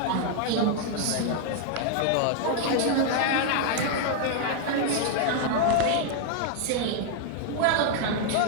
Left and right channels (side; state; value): both; different; correlation 0.00